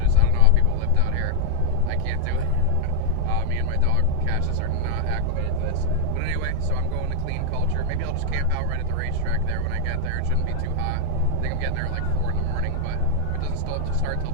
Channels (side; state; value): both; different; correlation 0.00